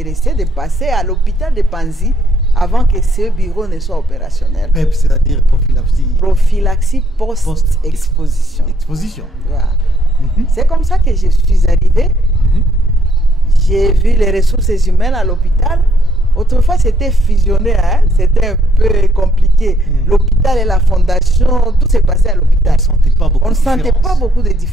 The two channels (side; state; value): both; normal; correlation 0.69